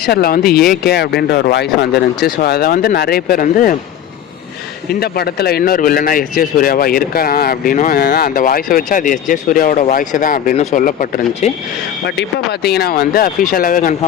வந்து ஏகே அப்படின்ற ஒரு வாய்ஸ் வந்துருந்துச்சு. ஸோ அதை வந்து நிறைய பேர் வந்து இந்த படத்தில் இன்னொரு வில்லனாக எஸ்ஜே சூர்யாவாக இருக்கலாம் அப்படின்னும், அந்த வாய்ஸை வச்சு அது எஸ்ஜே சூர்யாவோட வாய்ஸை தான் அப்படின்னு சொல்லப்பட்டிருந்துச்சு. பட் இப்போ பார்த்தீங்கன்னா வந்து அஃபிஷியலாகவே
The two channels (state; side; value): quieter; right; 10.0 dB